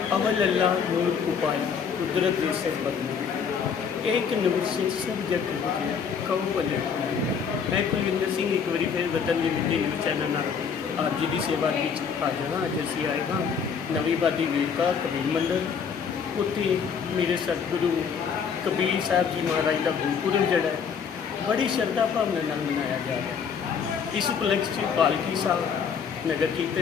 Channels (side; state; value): right; quieter; 6.6 dB